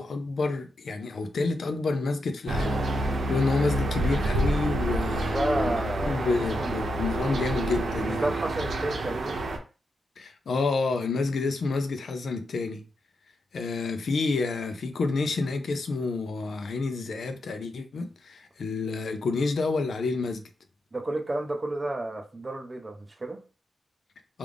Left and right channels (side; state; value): both; normal; correlation 0.84